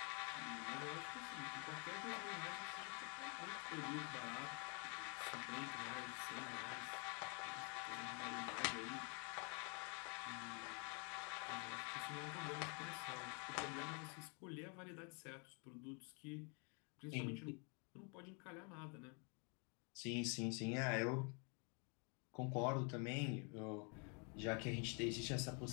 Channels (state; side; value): quieter; right; 36.3 dB